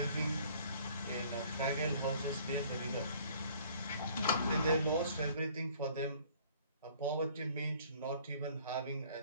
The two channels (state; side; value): inverted; both; correlation -0.56